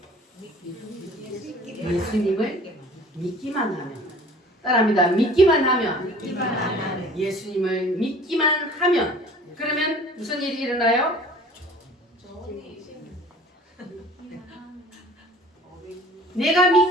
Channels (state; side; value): normal; both; correlation 0.48